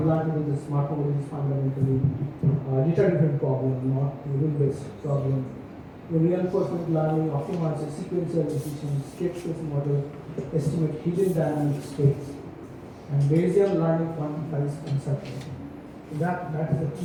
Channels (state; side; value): identical; both; correlation 1.00